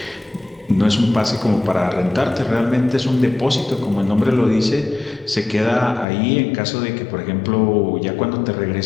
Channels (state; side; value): drops out; right; at 6.1 s